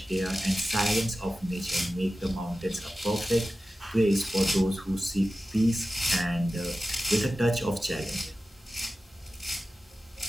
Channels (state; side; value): normal; both; correlation 0.95